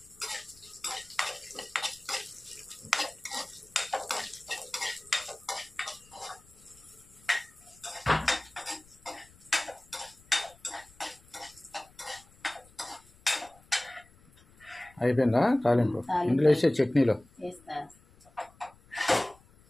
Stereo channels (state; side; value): noise; left; rumble, 27 dB below the sound